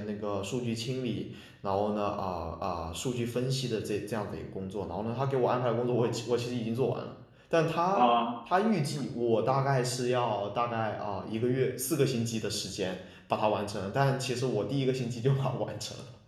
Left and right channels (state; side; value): identical; both; correlation 1.00